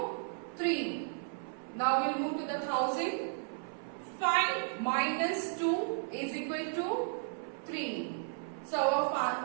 3. Now we will move to the thousand. 5 minus 2 is equal to 3. So our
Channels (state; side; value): silent; left; 55 dB below the other